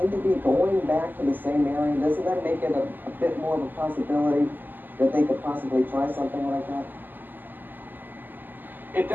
to be going back to the same area, doesn't that make it a bit more of a possibility that they could possibly try something like that? It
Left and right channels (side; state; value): left; late; 0.089 ms